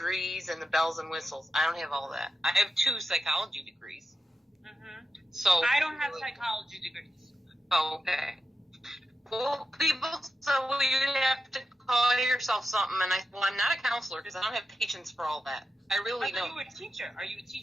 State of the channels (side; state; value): both; normal; correlation 0.89